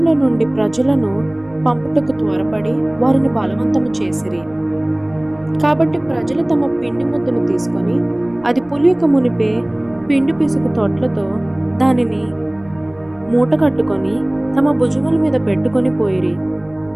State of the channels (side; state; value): right; noise; rumble, 27 dB below the sound